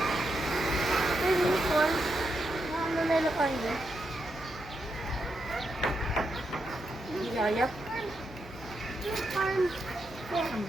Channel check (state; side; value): noise; right; hum, 20 dB below the sound